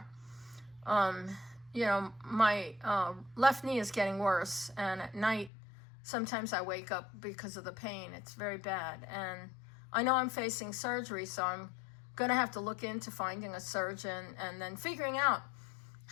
You know, my left knee is getting worse, and at night sometimes I wake up because of the pain. It's very bad, and I know I'm facing surgery, so I'm gonna have to look into finding a surgeon and then figuring out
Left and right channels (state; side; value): drops out; right; at 5.5 s